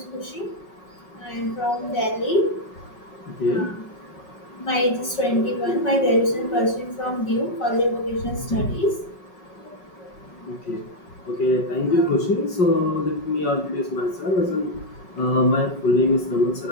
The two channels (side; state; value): right; late; 5.4 ms